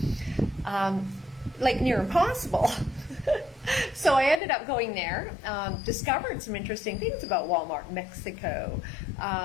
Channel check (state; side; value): drops out; right; at 4.4 s